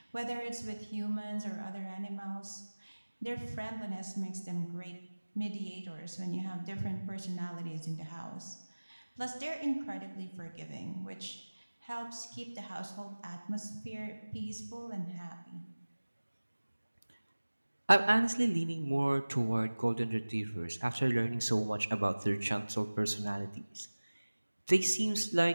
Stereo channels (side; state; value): both; inverted; correlation -1.00